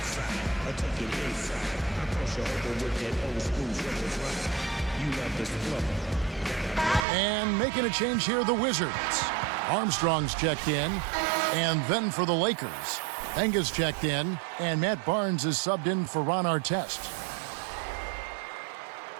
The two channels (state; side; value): drops out; left; at 7.1 s